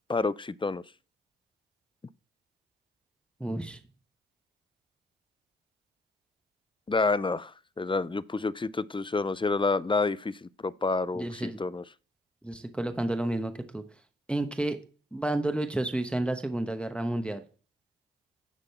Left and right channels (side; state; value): both; normal; correlation 0.69